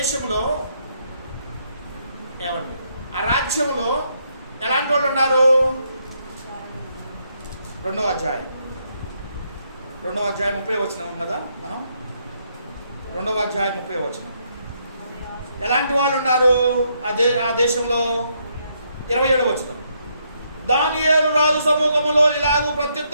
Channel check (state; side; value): inverted; both; correlation -0.75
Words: ఏమండి, ఆ రాజ్యంలో ఎలాంటి వాళ్ళు ఉన్నారు? 2వ అధ్యాయం 30 వచనం కదా మనం. 2వ అధ్యాయం 30 వచనం. ఎలాంటి వాళ్ళు ఉన్నారు ఆ దేశంలో? 27 వచనం. దానియేలు రాజు సమూహములో ఇలాగూ